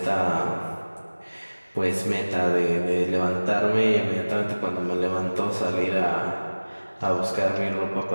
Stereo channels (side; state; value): both; inverted; correlation -1.00